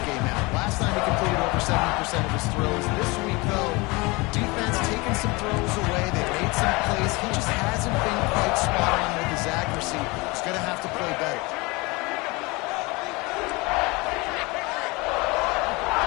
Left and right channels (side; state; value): right; quieter; 25.2 dB